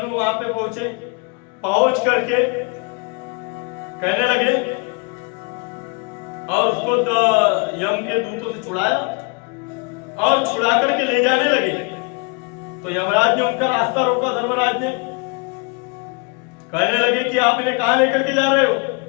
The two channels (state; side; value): quieter; right; 32.3 dB